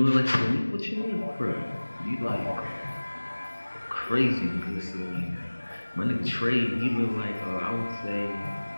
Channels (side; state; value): both; inverted; correlation -1.00